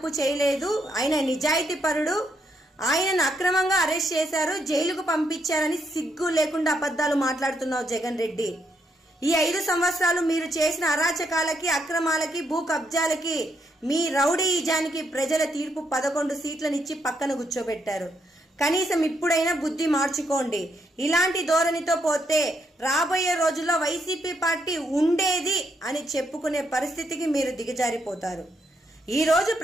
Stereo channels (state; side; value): normal; both; correlation 0.77